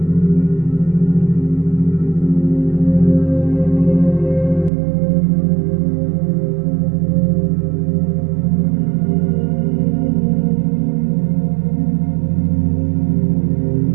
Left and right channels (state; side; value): drops out; left; at 4.7 s